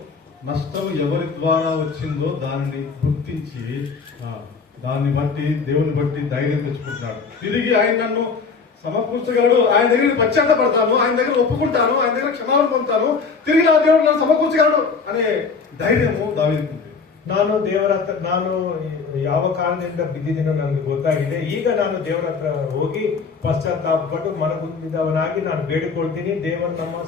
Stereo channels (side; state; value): right; quieter; 5.1 dB